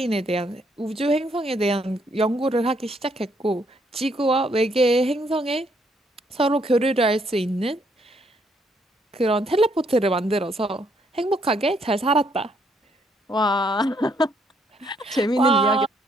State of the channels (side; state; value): both; normal; correlation 0.70